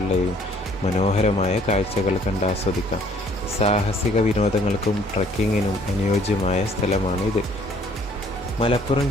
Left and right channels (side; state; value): both; normal; correlation 0.60